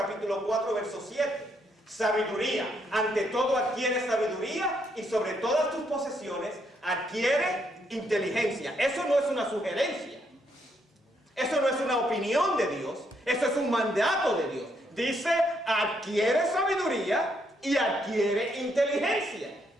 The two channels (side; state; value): both; normal; correlation 0.75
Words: 4, verso 7. Sabiduría, ante todo adquiere sabiduría, y sobre todas tus posesiones adquiere inteligencia. Eso no es una sugerencia, eso no es una opinión de Dios, eso es un mandato de Dios. Dice, adquiere sabiduría y adquiere inteligencia.